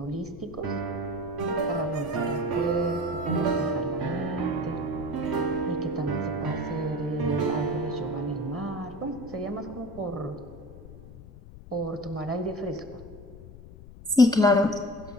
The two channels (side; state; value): left; noise; rumble, 17 dB below the sound